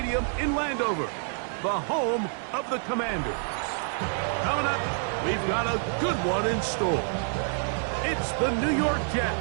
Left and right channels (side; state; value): left; silent; 60 dB below the other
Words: in Landover, the home of the Commanders. Coming up, we've got a good one in store. It's the New York